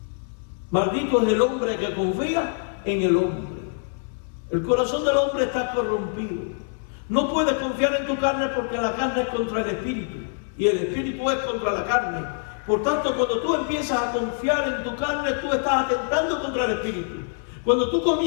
Maldito es el hombre que confía en el hombre. El corazón del hombre está corrompido. No puedes confiar en tu carne porque la carne es contra el espíritu y el espíritu es contra la carne. Por tanto, cuando tú empiezas a confiar en tu carne, tú estás atentando contra el espíritu. Cuando tú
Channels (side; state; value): right; silent; 60 dB below the other